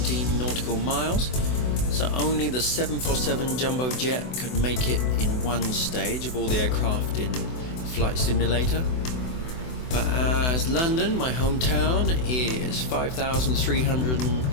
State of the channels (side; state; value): right; late; 24 ms